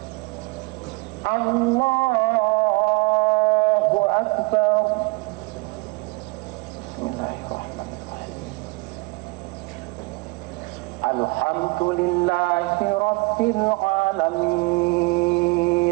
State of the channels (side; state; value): left; quieter; 25.6 dB